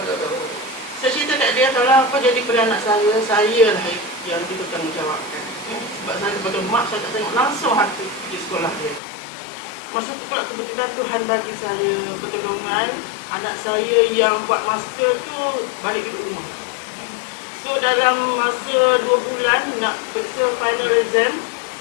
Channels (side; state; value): right; drops out; at 9.0 s